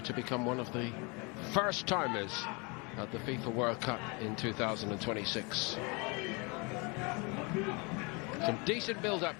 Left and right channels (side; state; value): right; quieter; 30.1 dB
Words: to become one of the first timers at the FIFA World Cup in 2026. Some decent build-up